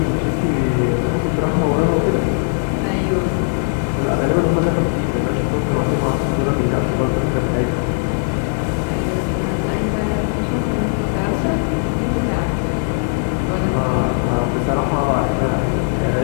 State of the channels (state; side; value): silent; right; digital silence